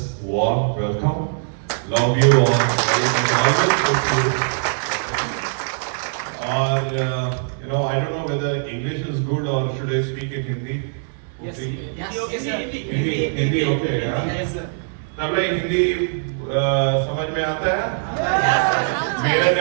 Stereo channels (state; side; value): silent; left; digital silence